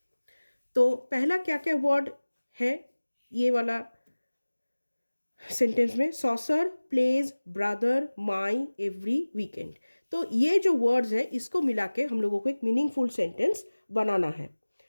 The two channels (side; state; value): both; inverted; correlation -1.00